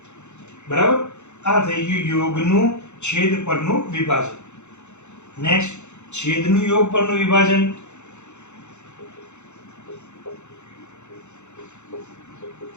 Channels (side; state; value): right; late; 0.83 ms